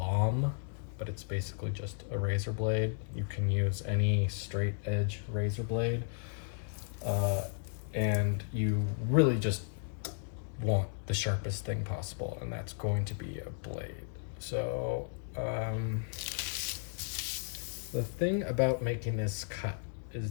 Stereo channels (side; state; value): right; silent; digital silence